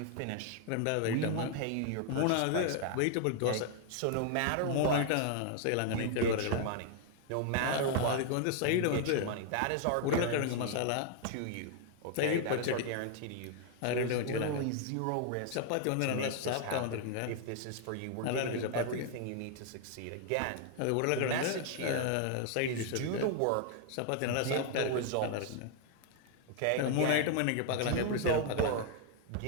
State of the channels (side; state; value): both; different; correlation 0.00